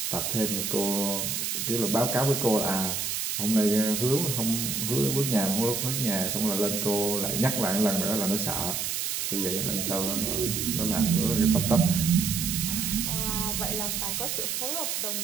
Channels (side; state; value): right; noise; hiss, 1 dB below the sound